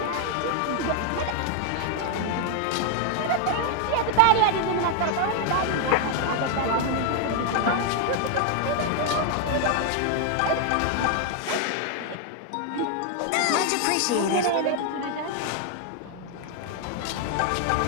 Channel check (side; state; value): both; different; correlation 0.00